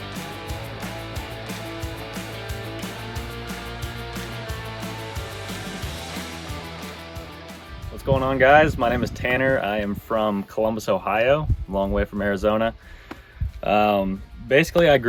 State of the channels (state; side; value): identical; both; correlation 1.00